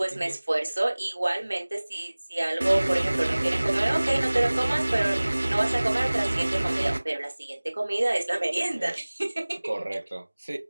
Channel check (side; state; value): both; inverted; correlation -1.00